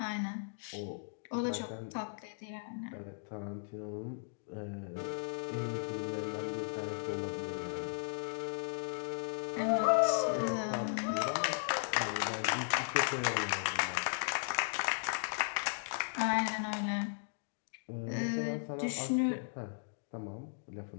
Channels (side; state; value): right; silent; digital silence